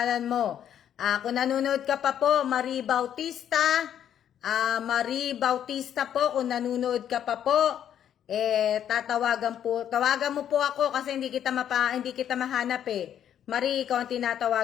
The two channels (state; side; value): quieter; right; 9.8 dB